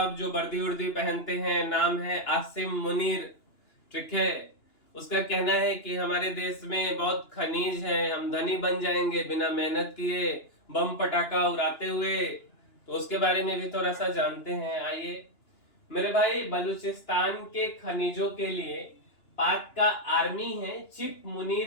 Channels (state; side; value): late; right; 2.9 ms